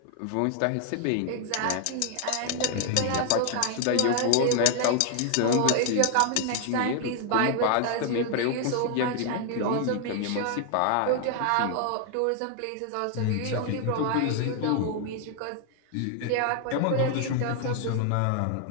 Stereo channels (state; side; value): different; both; correlation 0.00